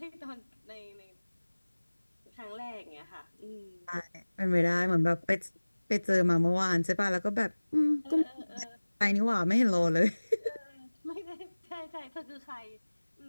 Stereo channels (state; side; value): inverted; both; correlation -1.00